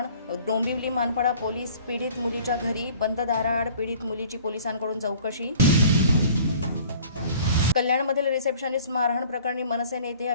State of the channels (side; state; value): both; inverted; correlation -0.50